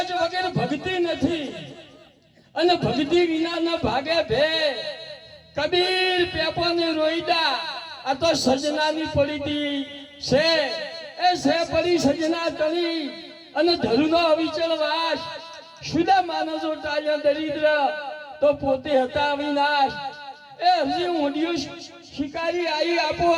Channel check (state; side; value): identical; both; correlation 1.00